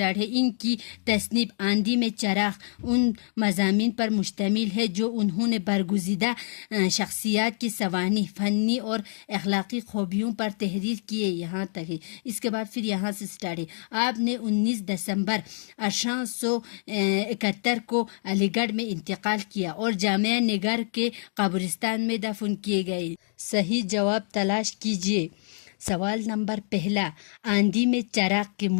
ہے۔ ان کی تصنیف آندھی میں چراغ ان مضامین پر مشتمل ہے جو انہوں نے برگزیدہ شخصیات کی سوانح، فنی اور اخلاقی خوبیوں پر تحریر کیے۔ یہاں تک ہے، اس کے بعد پھر یہاں سے سٹارٹ ہے۔ آپ نے 19 دسمبر 1871 کو علی گڑھ میں انتقال کیا اور جامعہ نگر کے قبرستان میں دفن کیے گئے۔ صحیح جواب تلاش کیجیے۔ سوال نمبر 1، آندھی میں چراغ کے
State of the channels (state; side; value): silent; right; 61 dB below the other